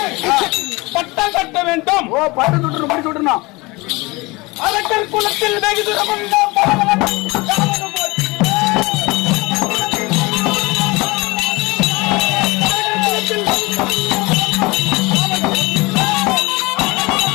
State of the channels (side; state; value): right; quieter; 23.8 dB